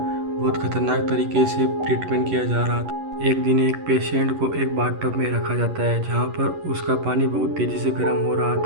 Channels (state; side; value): late; left; 11 ms